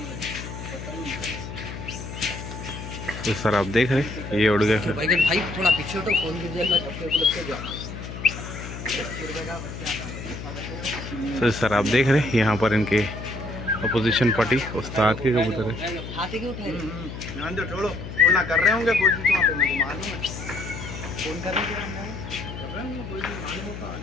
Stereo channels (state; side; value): noise; left; hum, 9 dB below the sound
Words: तो सर आप देख रहे ये उड़ गए। भाई भाई थोड़ा पीछे हटो, फोन गिर जाएगा। तो सर आप देख रहे यहाँ पर इनके अपोजिशन पार्टी उस्ताद के कबूतर है। हाथी क्यों उठाए? ध्यान दो, छोड़ो उड़ना कर रहे होंगे कोशिश वहाँ पे, मेरे को मालूम है। फोन कर रहे थे कर रहे होंगे कोई भी, मालूम होता